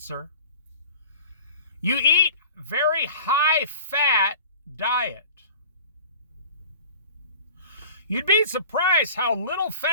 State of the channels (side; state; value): both; inverted; correlation -0.43